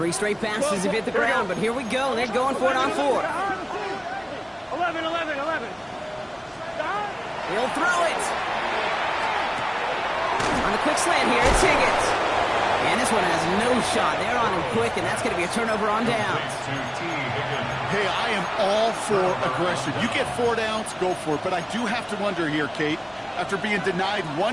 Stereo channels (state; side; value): identical; both; correlation 1.00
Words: straight passes have hit the ground, but here we go. They're going for it on 4. 11. He'll throw it. On the quick slant here, it's Higgins. And this one has no shot. They're on him quick, and that's going to be a turnover on downs. Hey, I am all for aggression. You get 4 downs, go for it. But I do have to wonder here, Kate, after being denied